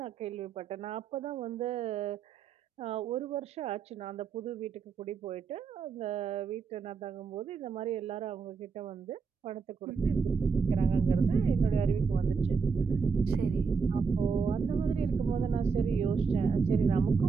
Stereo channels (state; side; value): quieter; left; 5.4 dB